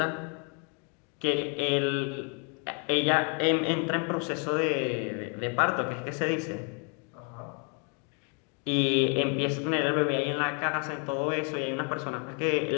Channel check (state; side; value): quieter; right; 38.4 dB